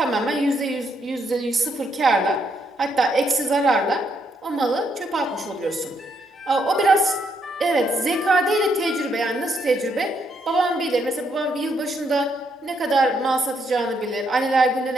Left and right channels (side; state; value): both; normal; correlation 0.75